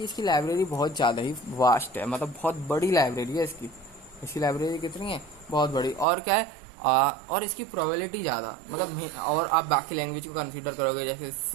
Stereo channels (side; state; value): left; drops out; at 6.1 s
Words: इसकी लाइब्रेरी बहुत ज़्यादा ही वास्ट है, मतलब बहुत बड़ी लाइब्रेरी है इसकी लाइब्रेरी कितनी है, बहुत बड़ी। और क्या है, और इसकी प्रोबेबिलिटी ज़्यादा, मतलब और आप बाकी लैंग्वेज को कंसीडर करोगे जैसे